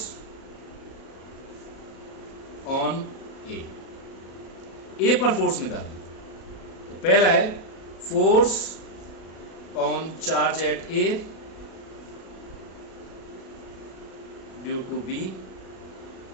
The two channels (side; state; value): right; late; 37 ms